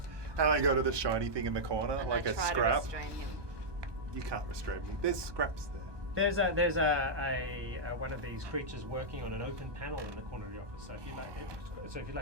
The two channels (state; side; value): late; left; 1.2 ms